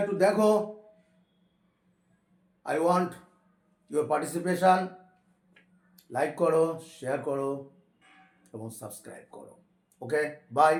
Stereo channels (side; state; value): both; identical; correlation 1.00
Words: একটু দেখো, I want your participation, like করো, শেয়ার করো এবং সাবস্ক্রাইব করো। ওকে, বাই,